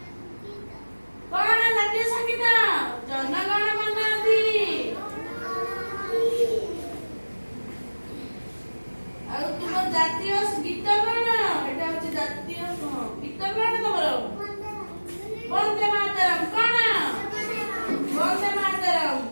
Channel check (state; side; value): inverted; both; correlation -1.00